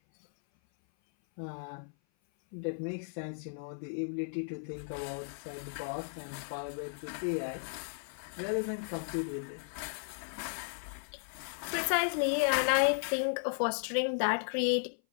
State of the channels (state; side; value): silent; right; 54 dB below the other